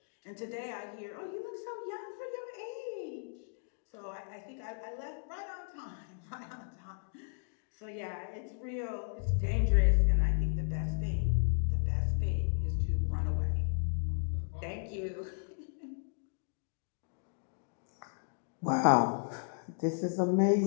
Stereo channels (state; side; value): silent; right; digital silence